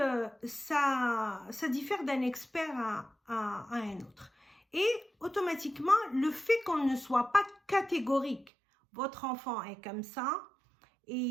ça diffère d'un expert à un autre. Et automatiquement, le fait qu'on ne soit pas catégorique, votre enfant est comme ça,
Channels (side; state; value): left; drops out; at 8.5 s